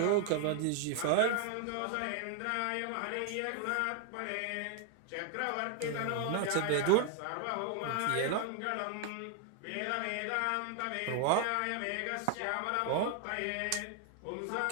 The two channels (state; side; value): different; both; correlation 0.00